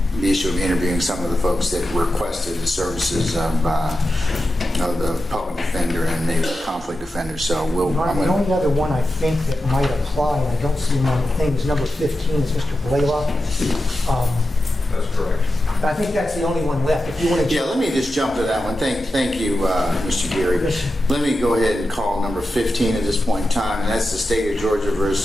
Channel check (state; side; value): normal; both; correlation 0.91